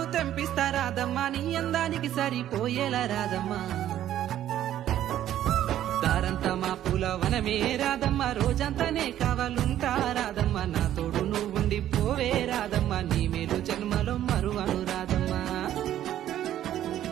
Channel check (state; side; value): quieter; left; 11.9 dB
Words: తెంపిస్తా రాదమ్మ, నీ అందానికి సరిపోయేలా రాదమ్మా. దారంతా మా పూలవనమే రాదమ్మ, రోజంతానే కావాలుంటా రాదమ్మ, నా తోడు నువ్వుండి పోవే రాదమ్మ, నీ మేలు జన్మలో మరువను రాదమ్మా.